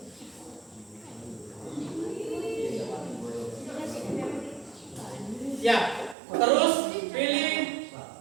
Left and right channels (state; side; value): drops out; left; at 6.2 s